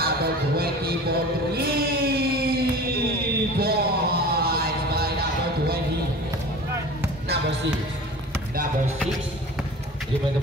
20 for 3 points by number 20. Number 6. Number 6. Dribble the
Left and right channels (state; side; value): normal; both; correlation 0.39